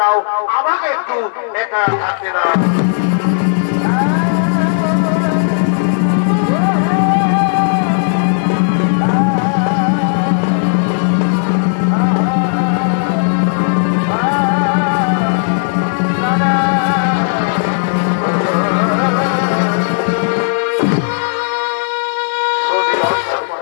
দাও, আমাকে একটু একা থাকতে দাও।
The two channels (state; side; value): silent; right; digital silence